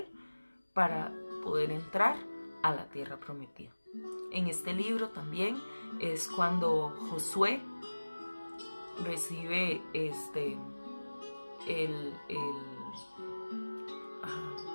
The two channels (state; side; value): inverted; both; correlation -1.00